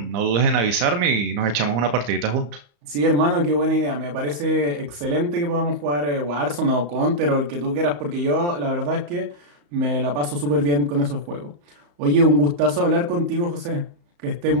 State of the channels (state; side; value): late; left; 34 ms